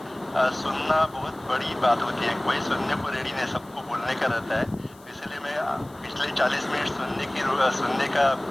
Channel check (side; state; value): left; noise; hiss, 26 dB below the sound